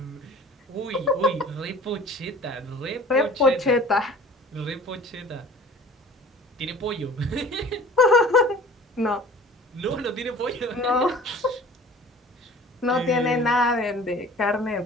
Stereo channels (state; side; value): normal; both; correlation 0.46